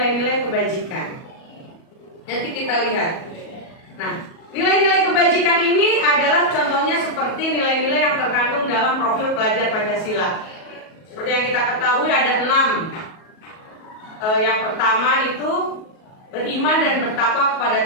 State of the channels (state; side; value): late; right; 37 ms